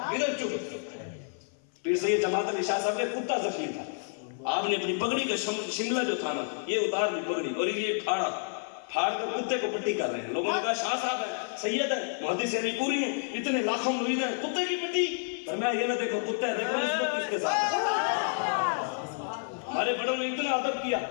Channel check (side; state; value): right; silent; 55 dB below the other